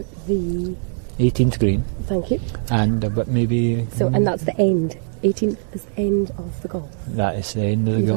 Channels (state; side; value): silent; left; 65 dB below the other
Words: the 18th green. Thank you. And but maybe. So and that's the end. 18th is the end of the golf. That is the end of the You've golf.